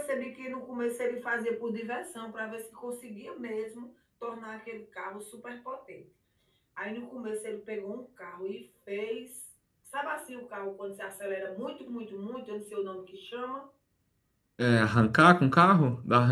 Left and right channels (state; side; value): identical; both; correlation 1.00